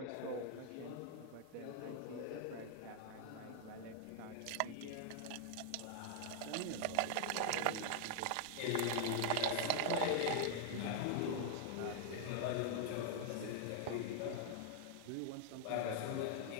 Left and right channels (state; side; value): different; both; correlation -0.01